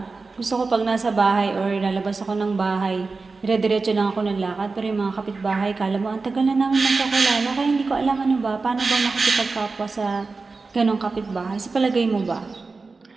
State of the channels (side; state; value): left; quieter; 4.0 dB